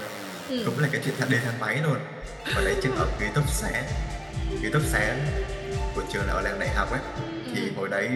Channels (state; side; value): identical; both; correlation 1.00